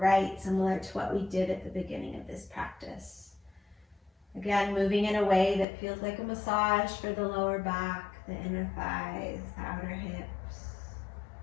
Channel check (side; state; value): right; drops out; at 5.7 s